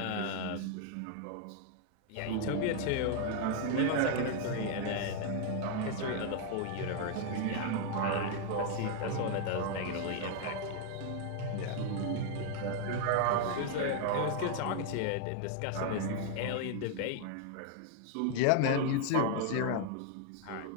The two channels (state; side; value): different; both; correlation 0.00